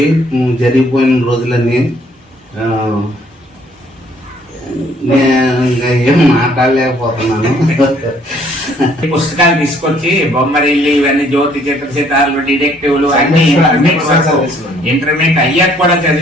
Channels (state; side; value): normal; both; correlation 0.62